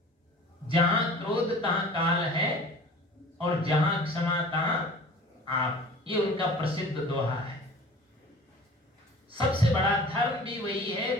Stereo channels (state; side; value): normal; both; correlation 0.43